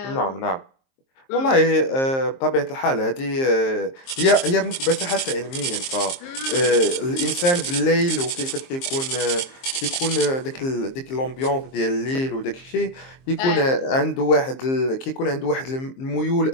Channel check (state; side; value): late; right; 23 ms